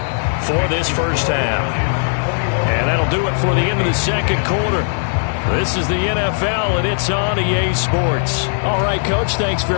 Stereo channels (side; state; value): right; silent; digital silence